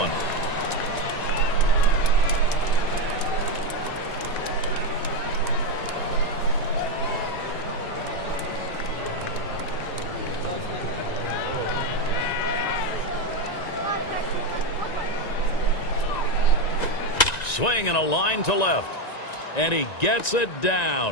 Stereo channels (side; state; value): right; late; 1.9 ms